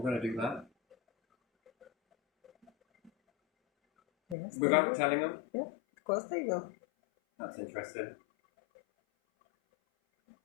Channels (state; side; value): drops out; right; at 4.4 s